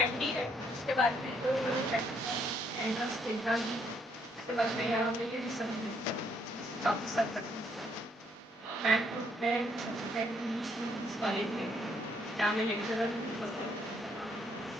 MD है। उसके बाद में एंट्रेंस एग्जाम, उसके बाद में यहाँ पे रिसर्च ऑफिसर मैं कॉलेज में जहाँ में लेक्चरर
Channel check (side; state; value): both; normal; correlation 0.70